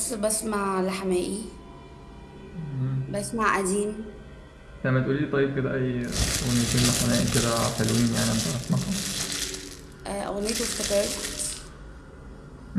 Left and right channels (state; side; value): identical; both; correlation 1.00